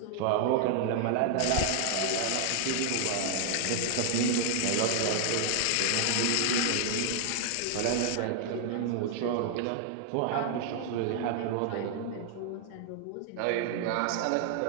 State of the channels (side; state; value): both; different; correlation 0.00